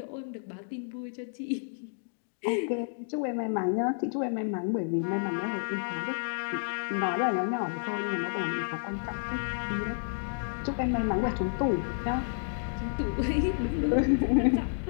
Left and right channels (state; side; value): silent; right; digital silence